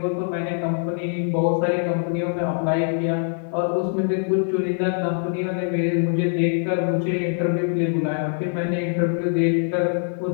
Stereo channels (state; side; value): silent; right; digital silence